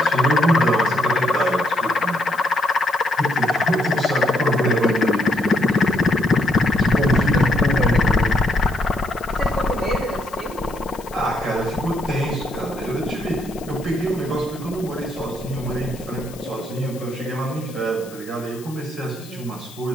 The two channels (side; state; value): left; noise; hiss, 20 dB below the sound